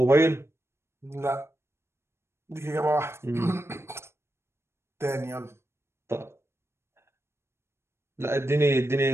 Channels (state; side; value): late; left; 0.12 ms